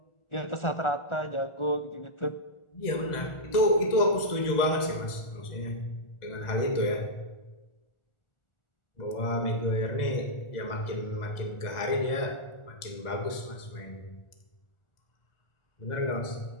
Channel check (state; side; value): late; right; 1.4 ms